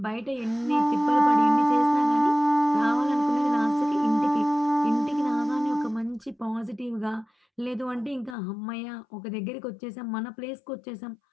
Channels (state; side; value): drops out; right; at 8.3 s